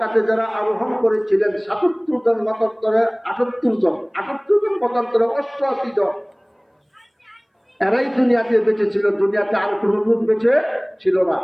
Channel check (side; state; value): both; identical; correlation 1.00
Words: যারা আরোহণ করেছিলেন ৭৭ জন, মতান্তরে ৭৮ জন, ৭৮ জন মতান্তরে ৮৮ জন, এরাই দুনিয়াতে বেঁচে ছিল। দুনিয়াতে আর কোনো লোক বেঁচে ছিল না।